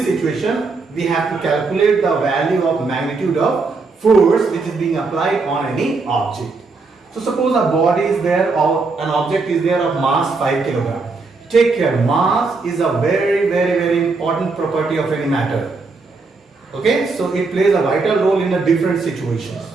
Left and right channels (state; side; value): quieter; left; 4.0 dB